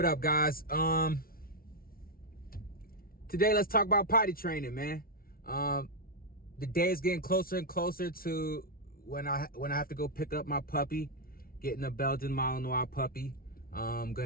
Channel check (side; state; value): right; late; 0.43 ms